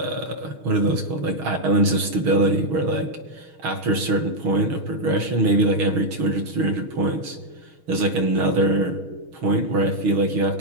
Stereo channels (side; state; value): left; late; 6.4 ms